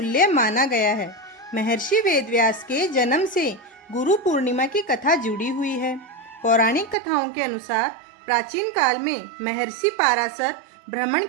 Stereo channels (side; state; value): left; drops out; at 7.0 s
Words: माना गया है। महर्षि वेदव्यास के जन्म से गुरु पूर्णिमा की कथा जुड़ी हुई है। पौराणिक कथाओं के अनुसार प्राचीन काल में महर्षि पाराशर भ्रमण